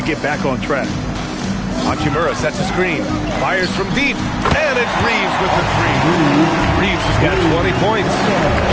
get back on track. Hachimura sets a screen. Fires from deep. And it's Reeves with the 3. Reeves has got 20 points.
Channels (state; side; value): identical; both; correlation 1.00